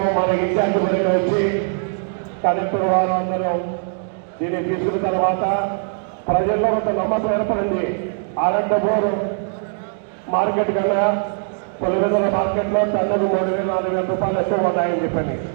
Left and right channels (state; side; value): silent; left; 60 dB below the other